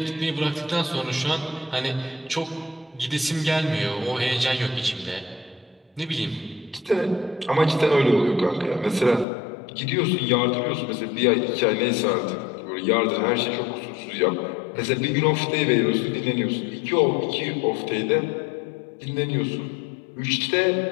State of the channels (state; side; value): drops out; right; at 9.2 s